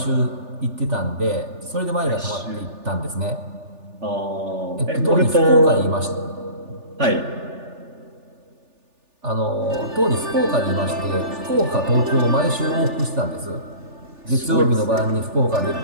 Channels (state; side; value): late; left; 3.4 ms